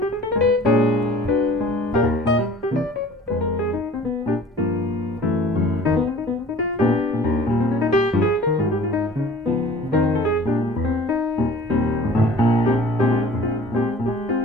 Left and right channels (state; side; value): normal; both; correlation 0.46